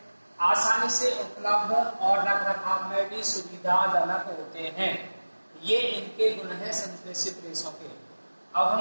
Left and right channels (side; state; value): both; inverted; correlation -1.00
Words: आसानी से उपलब्ध और रखरखाव में भी सुविधाजनक होते हैं। ये इनके गुण हैं संश्लेषित रेशों के। अब